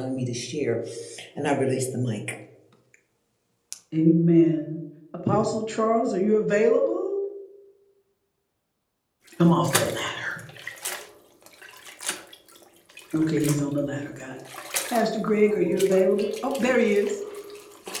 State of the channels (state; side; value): identical; both; correlation 1.00